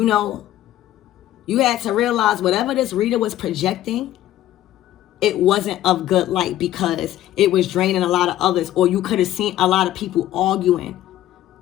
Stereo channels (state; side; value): quieter; right; 13.5 dB